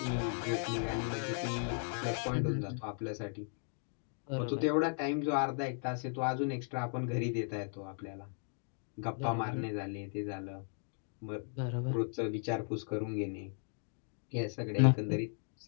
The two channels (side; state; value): right; silent; 53 dB below the other